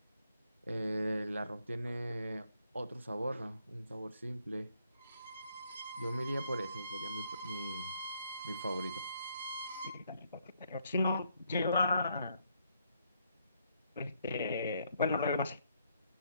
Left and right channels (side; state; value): both; inverted; correlation -0.72